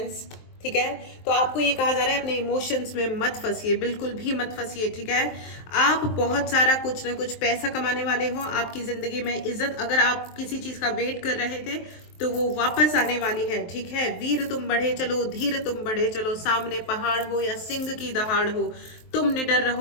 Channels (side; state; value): right; late; 23 ms